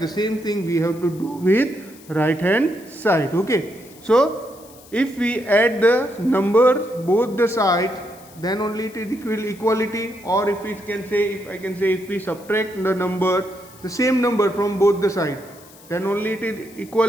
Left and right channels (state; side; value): noise; left; hiss, 23 dB below the sound